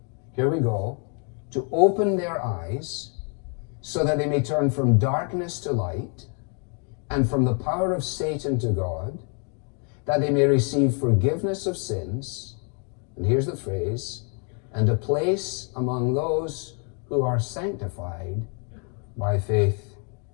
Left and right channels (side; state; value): right; quieter; 39.7 dB